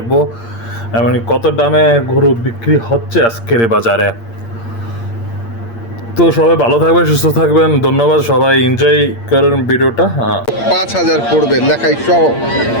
এবং কত দামে গরু বিক্রি হচ্ছে আজকের এই বাজারে। তো সবাই ভালো থাকবেন, সুস্থ থাকবেন। ধন্যবাদ, সবাই এনজয় করেন ভিডিওটা। 5,000 পড়বে লেখাই সহ।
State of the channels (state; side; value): late; right; 8.7 ms